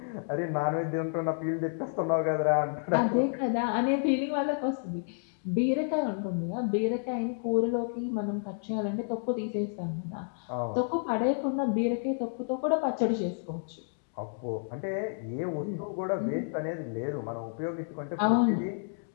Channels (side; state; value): right; silent; digital silence